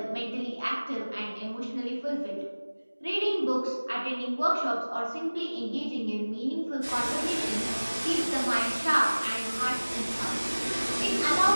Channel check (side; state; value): both; inverted; correlation -1.00